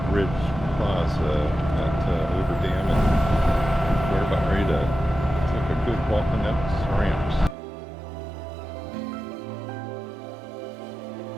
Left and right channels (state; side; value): drops out; left; at 7.6 s